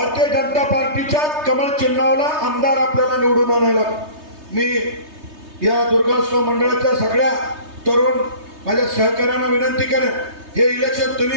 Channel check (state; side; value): late; left; 3.3 ms